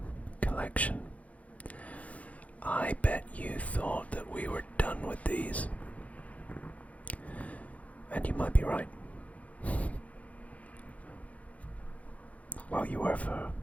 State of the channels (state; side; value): late; right; 0.067 ms